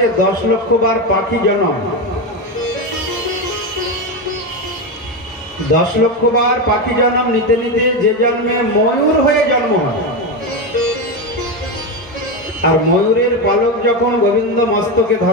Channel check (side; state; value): both; normal; correlation 0.14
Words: 10 লক্ষ বার পাখি জন্ম। 10 লক্ষ বার পাখি জন্ম নিতে নিতে যে জন্মে ময়ূর হয়ে জন্ম হয়, আর ময়ূরের পালক যখন গোবিন্দ মস্তকে